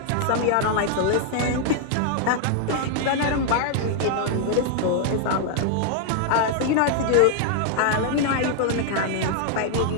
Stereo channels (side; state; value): both; different; correlation 0.00